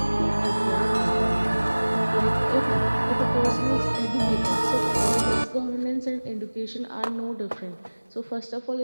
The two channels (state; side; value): inverted; both; correlation -1.00